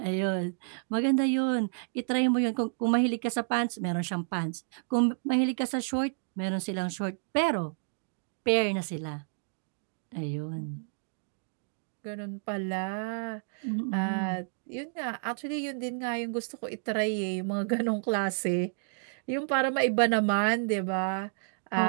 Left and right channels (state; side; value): silent; left; digital silence